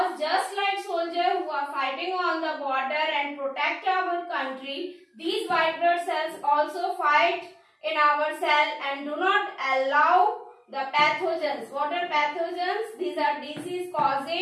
just like soldiers who are fighting on the border and protect our country, these white blood cells also fight in our cell and do not allow the pathogens. What are pathogens? These are disease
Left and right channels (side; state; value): both; identical; correlation 1.00